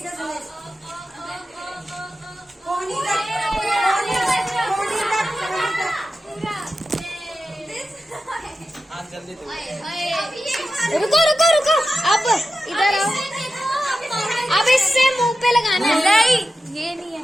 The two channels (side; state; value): both; normal; correlation 0.92